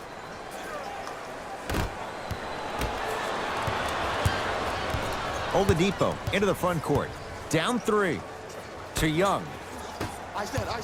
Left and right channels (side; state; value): both; identical; correlation 1.00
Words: Oladipo into the front court. Down 3. To Young. Ice that.